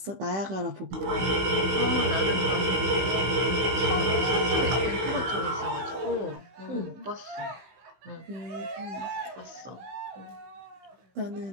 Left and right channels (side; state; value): left; late; 16 ms